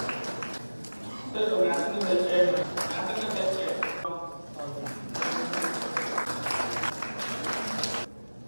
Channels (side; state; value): both; inverted; correlation -1.00